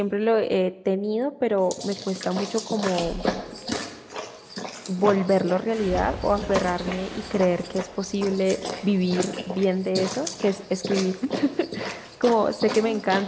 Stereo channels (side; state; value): both; identical; correlation 1.00